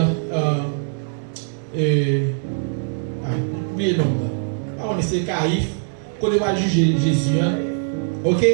Oubliez le nom. On essaie Caïphe, côté va juger Jésus. Ok?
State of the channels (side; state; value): left; silent; digital silence